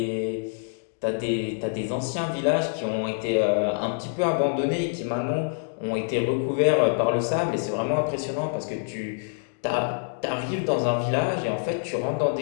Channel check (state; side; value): silent; right; digital silence